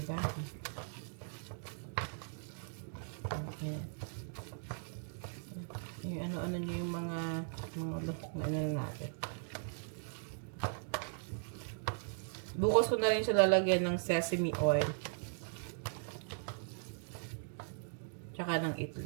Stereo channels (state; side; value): silent; left; digital silence